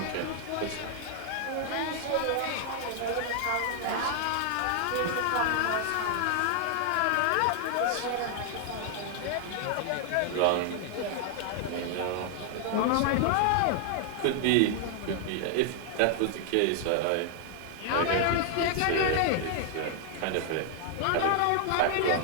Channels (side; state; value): both; different; correlation 0.00